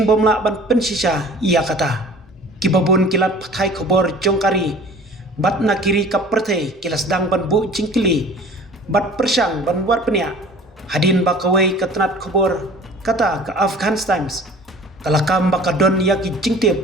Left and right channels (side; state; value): both; normal; correlation 0.45